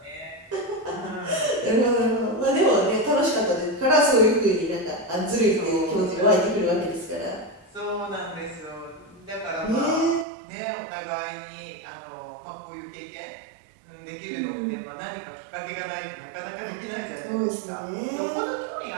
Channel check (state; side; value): drops out; left; at 10.2 s